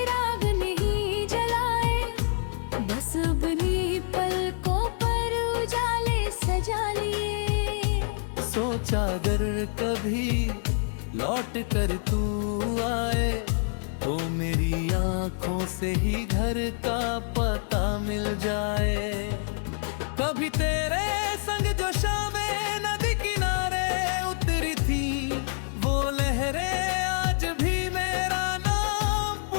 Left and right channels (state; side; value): silent; right; 60 dB below the other